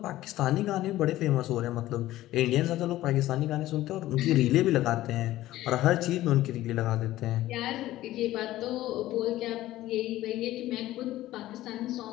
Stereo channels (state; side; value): quieter; right; 15.4 dB